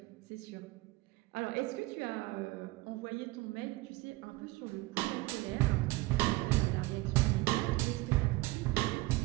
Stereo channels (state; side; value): quieter; left; 20.5 dB